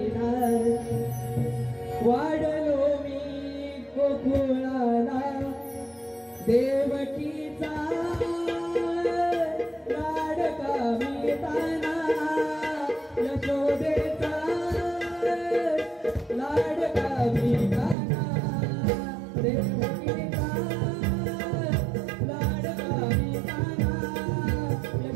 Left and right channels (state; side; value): drops out; left; at 17.9 s